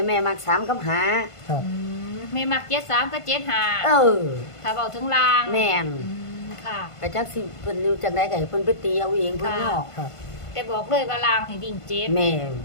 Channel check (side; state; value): right; late; 1.5 ms